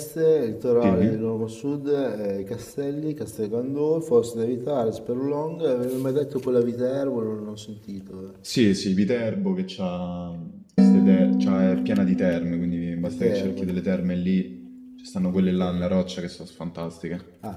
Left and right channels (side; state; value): both; identical; correlation 1.00